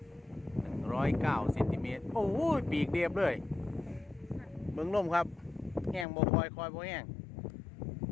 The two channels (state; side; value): drops out; right; at 6.1 s